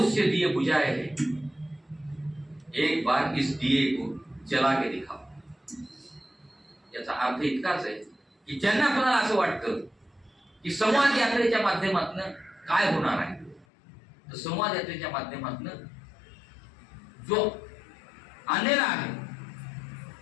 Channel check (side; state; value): right; drops out; at 13.7 s